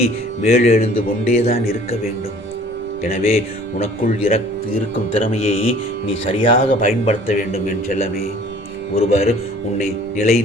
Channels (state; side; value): normal; both; correlation 0.51